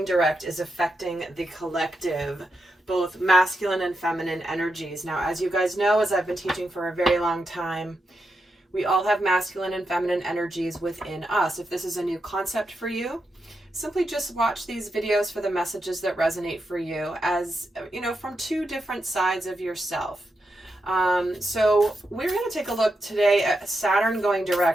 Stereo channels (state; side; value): normal; both; correlation 0.86